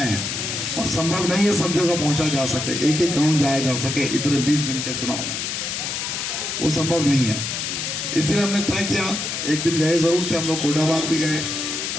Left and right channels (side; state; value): left; noise; hiss, 3 dB below the sound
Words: हैं और संभव नहीं है सब जगह पहुंचा जा सके, एक एक गांव जाया जा सके इतने 20 दिन के चुनाव में, वो संभव नहीं है। इसलिए हमने तय किया, एक दिन गए जरूर थे हम लोग, कोटाबाग भी गए,